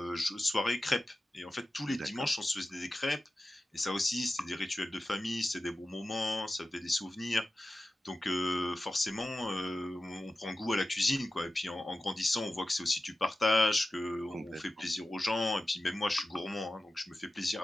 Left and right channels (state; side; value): normal; both; correlation 0.94